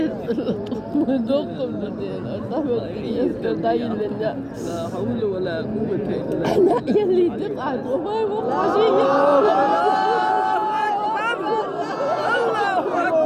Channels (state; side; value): identical; both; correlation 1.00